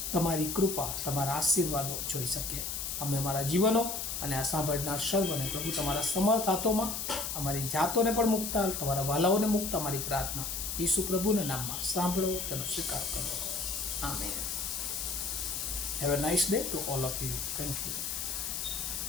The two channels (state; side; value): noise; left; hiss, 3 dB below the sound